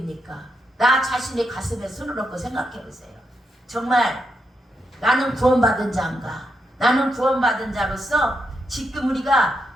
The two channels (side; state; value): both; normal; correlation 0.82